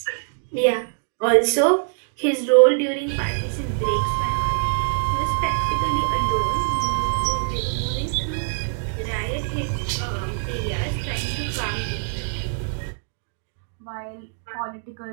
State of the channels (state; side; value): silent; left; digital silence